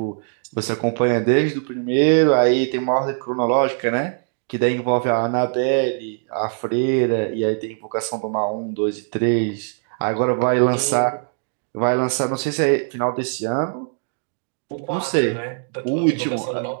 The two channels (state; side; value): silent; left; 62 dB below the other